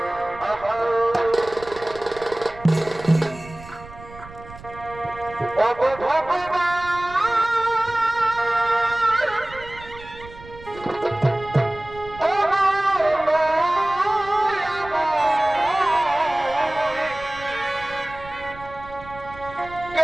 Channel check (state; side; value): noise; right; rumble, 18 dB below the sound